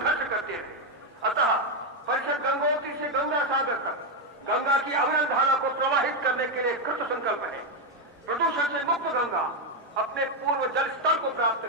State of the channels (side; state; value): both; normal; correlation 0.04